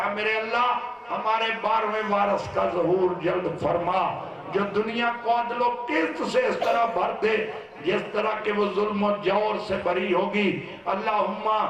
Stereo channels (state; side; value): identical; both; correlation 1.00